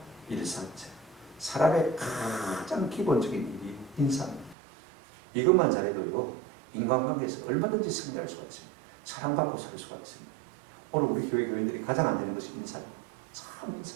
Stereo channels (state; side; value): drops out; left; at 4.5 s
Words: 일사자. 사람의 가장 기본적인 일이 인사입니다. 이것만 잘해도요, 인간관계에서 얼마든지 승리할 수가 있습니다. 사랑받고 살 수가 있습니다. 오늘 우리 교회 교인들이 가장 안 되는 것이 인사입니다. 참